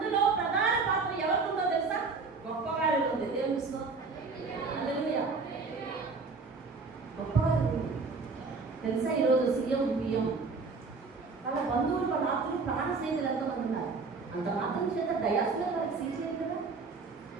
ప్రధాన పాత్ర ఎవరికి ఉందో తెలుసా? గొప్పవారిలో ఉంది. దేవుని స్తోత్రం. గొప్పవారు తెలుసా? ఈరోజు సీఎం, పిఎం, వాళ్ళ బంధువులు, వాళ్ళ ఆత్మలు, ప్రాణ స్నేహితులు ఎంతమంది ఉన్నారు. అంత మాత్రం చేత దయాసులో వాళ్ళకి సీజేది కదా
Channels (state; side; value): quieter; left; 4.3 dB